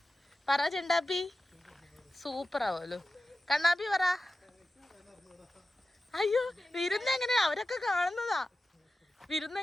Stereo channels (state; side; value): normal; both; correlation 0.93